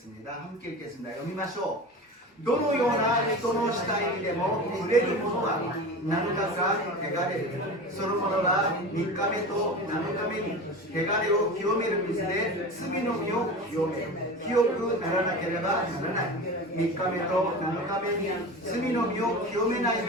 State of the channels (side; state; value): both; normal; correlation 0.31